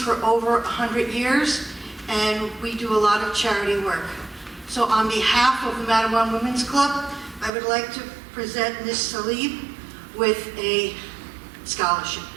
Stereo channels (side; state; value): left; drops out; at 7.5 s